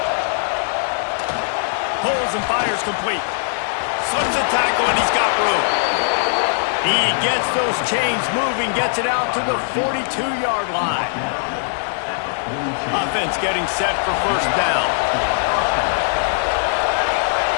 Pulls and fires complete. Slips a tackle, and he's got room. He gets those chains moving, gets it out to the 42-yard line. Offense getting set for 1st down.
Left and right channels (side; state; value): right; silent; 66 dB below the other